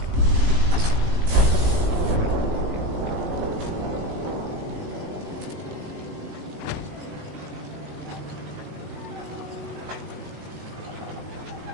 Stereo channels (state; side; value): late; left; 18 ms